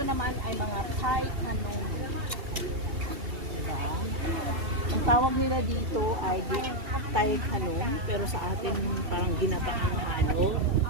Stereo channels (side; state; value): left; late; 2.7 ms